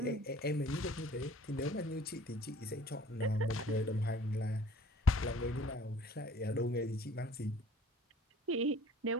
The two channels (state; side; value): normal; both; correlation 0.52